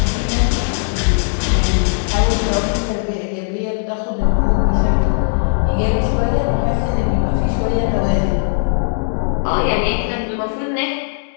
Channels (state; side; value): silent; right; digital silence